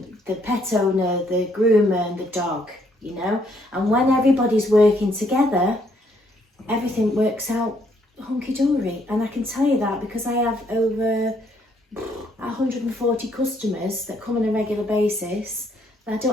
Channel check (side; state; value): both; normal; correlation 0.69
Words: the pet owner, the groomer and the dog, you know. And when everybody's working together, everything works out hunky-dory. And I can tell you that because I have over 140 customers that come on a regular basis that I